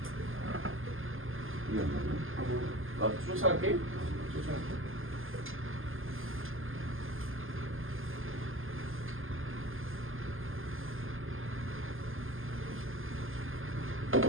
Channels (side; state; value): left; late; 0.59 ms